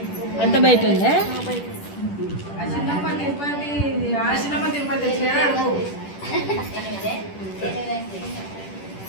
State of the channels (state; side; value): late; right; 10 ms